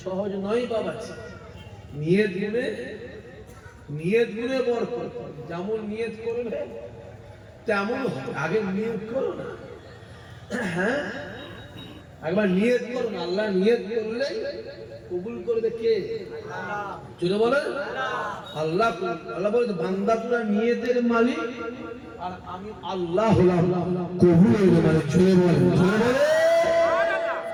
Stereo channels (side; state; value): both; identical; correlation 1.00